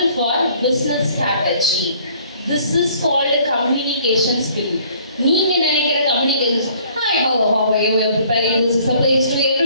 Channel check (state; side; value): inverted; both; correlation -0.57